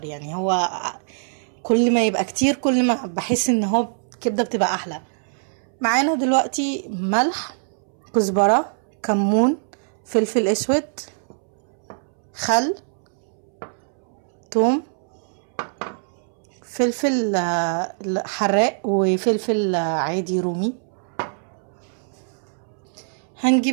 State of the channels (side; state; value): left; silent; 63 dB below the other